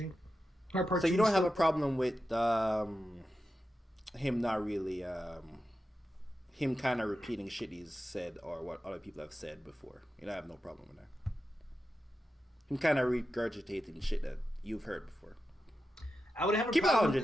Heart Part 2. So you don't have a problem with him not really him kind of repeating shit he's said or what other people have said before. You don't have no problem with that. Him kind of regurgitating shit that you've heard before. I would have a Keep it problem 100. with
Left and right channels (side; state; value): both; normal; correlation 0.91